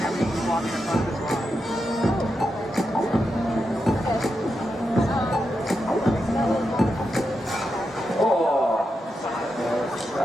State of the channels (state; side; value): normal; both; correlation 0.86